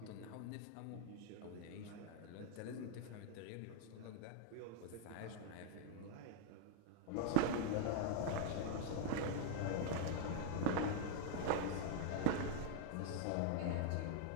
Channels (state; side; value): different; both; correlation 0.00